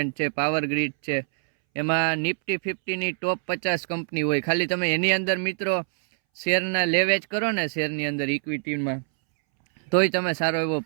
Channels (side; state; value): left; silent; 62 dB below the other